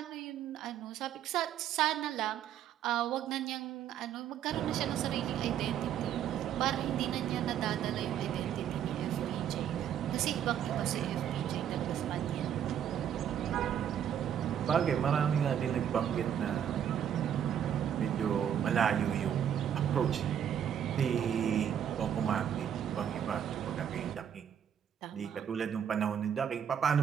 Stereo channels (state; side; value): quieter; left; 9.3 dB